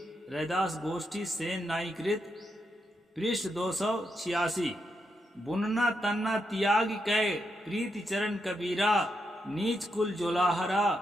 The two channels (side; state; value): both; normal; correlation 0.83